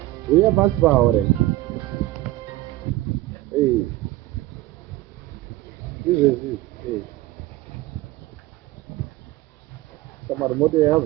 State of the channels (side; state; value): left; quieter; 17.1 dB